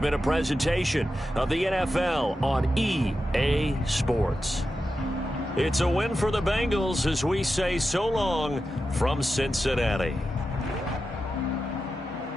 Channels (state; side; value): normal; both; correlation 0.91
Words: a presentation of the NFL on EA Sports. It's a win for the Bengals as we say so long from Cincinnati.